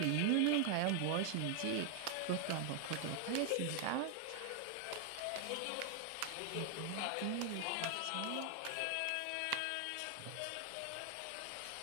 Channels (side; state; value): both; different; correlation 0.00